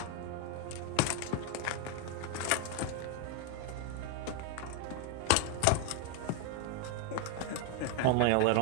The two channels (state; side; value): different; both; correlation 0.01